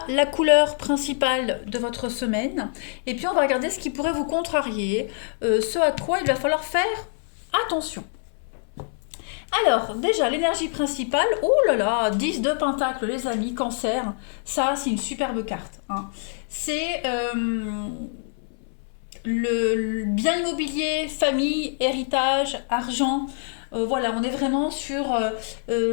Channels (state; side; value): silent; right; 62 dB below the other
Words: la couleur principale de votre semaine, et puis on va regarder ce qui pourrait vous contrarier, ce à quoi il va falloir faire attention. Alors, déjà, l'énergie principale, oh là là, 10 de pentacle, les amis, cancer, ça, c'est une superbe carte. Hein. C'est le bien immobilier, famille, héritage, argent. Voilà, on est vraiment sur